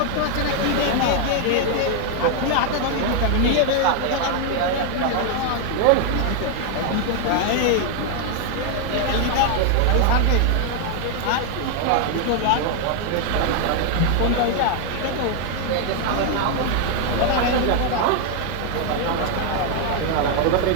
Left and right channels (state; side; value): different; both; correlation 0.00